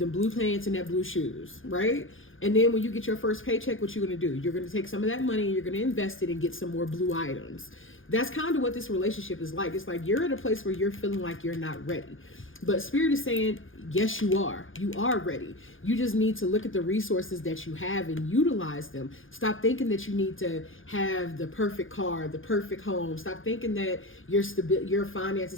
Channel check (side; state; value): right; late; 0.58 ms